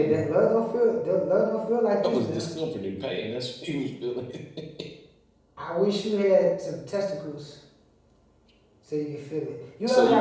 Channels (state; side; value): identical; both; correlation 1.00